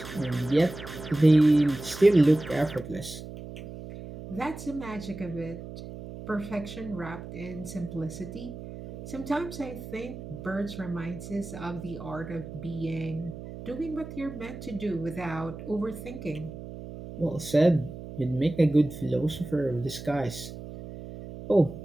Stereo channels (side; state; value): right; noise; hum, 11 dB below the sound